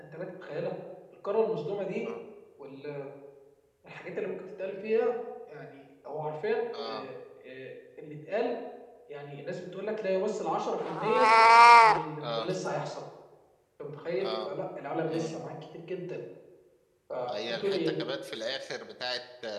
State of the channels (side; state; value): both; identical; correlation 1.00